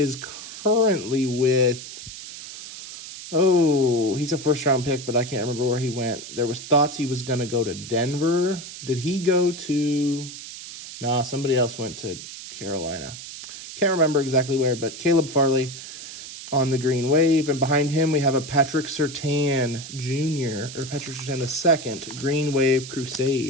currently with, he's a 1st-round pick, but I can't remember where he went. There was thoughts he was going to go to Denver. Did he go to, nah, somebody else went to Carolina. Can't remember exactly where, but Caleb Farley on the green wave. And behind him, we have a Patrick Surtain Jr., or Patrick Surtain II, green wave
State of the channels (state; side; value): noise; right; hiss, 12 dB below the sound